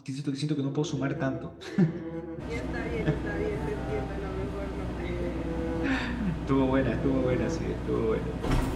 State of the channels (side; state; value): both; identical; correlation 1.00